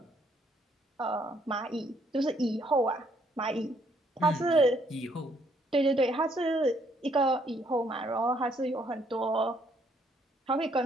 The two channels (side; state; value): both; normal; correlation 0.69